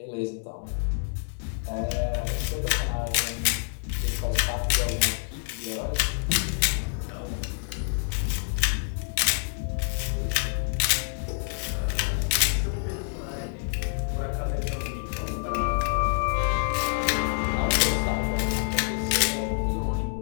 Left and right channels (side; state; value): right; silent; 59 dB below the other